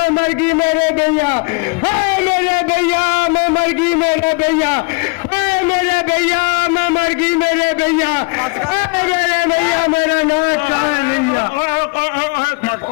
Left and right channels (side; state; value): right; quieter; 30.3 dB